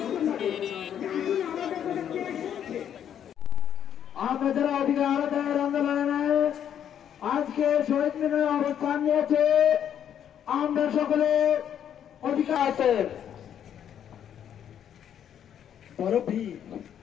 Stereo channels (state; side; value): quieter; right; 9.4 dB